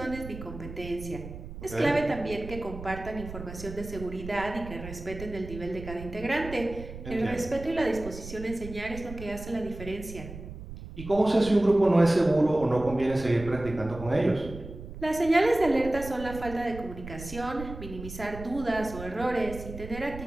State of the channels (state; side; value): noise; right; rumble, 12 dB below the sound